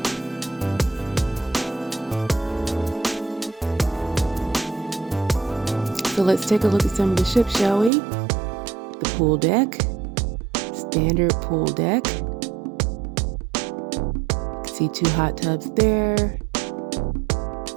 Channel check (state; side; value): drops out; left; at 7.9 s